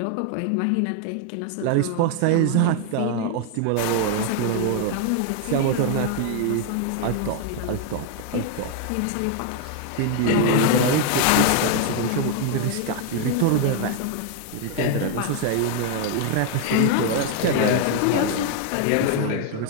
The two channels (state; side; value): different; both; correlation 0.00